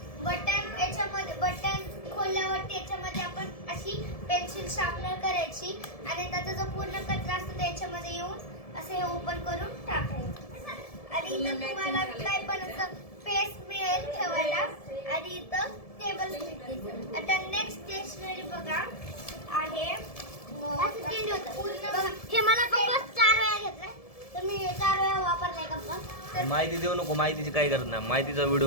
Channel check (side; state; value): right; late; 1.7 ms